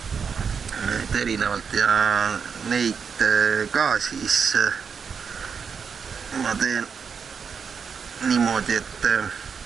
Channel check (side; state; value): left; quieter; 6.2 dB